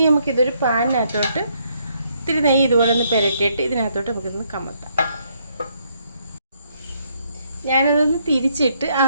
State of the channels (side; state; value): both; inverted; correlation -0.72